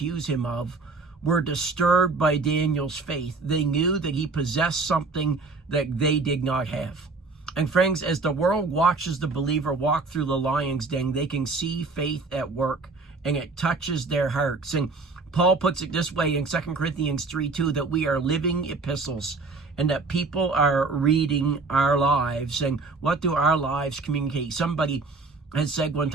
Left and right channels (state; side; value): quieter; left; 3.9 dB